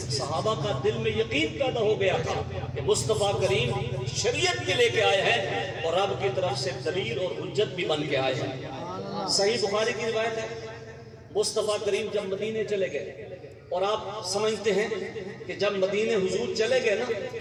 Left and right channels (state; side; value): identical; both; correlation 1.00